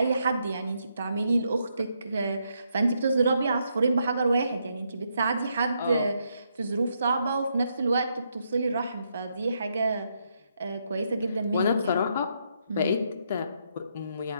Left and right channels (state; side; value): inverted; both; correlation -0.77